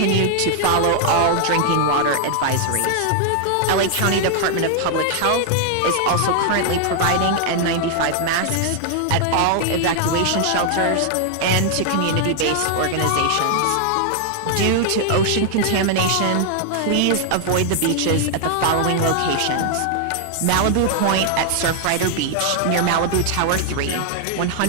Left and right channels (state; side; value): different; both; correlation 0.00